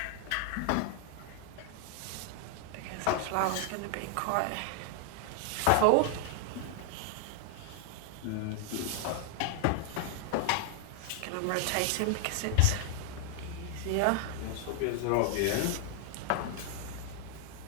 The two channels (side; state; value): both; different; correlation 0.00